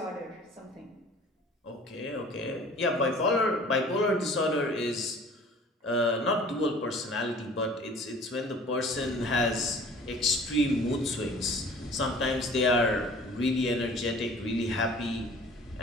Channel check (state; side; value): normal; both; correlation 0.48